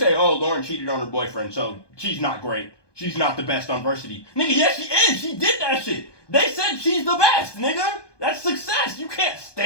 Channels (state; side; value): late; right; 1.2 ms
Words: oh, Lauren cheated on her boyfriend, so she's not great. She's not the best on varsity. Nigga, yes she is. She did that shit. They said she's the best, nigga. That's success. You can't